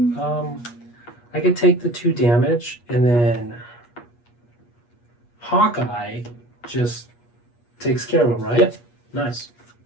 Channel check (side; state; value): right; late; 8.4 ms